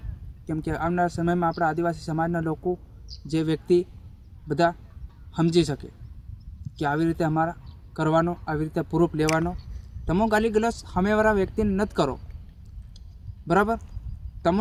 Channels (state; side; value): identical; both; correlation 1.00